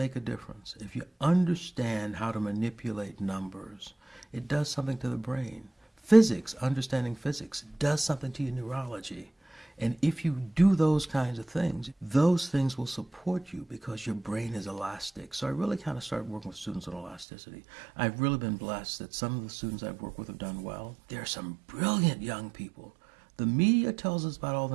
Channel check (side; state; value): left; drops out; at 17.2 s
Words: a difference. If you understand how to manipulate numbers, it does something to the brain. Physics, understanding physics, does something to your neurology. And if you do those kinds of things, those things will support you because your brain is elastic. So I really kind of started working with students on elasticity. I've really been blessed that some of the students I've worked with have done well. There are some brilliant young people. The media tells us about all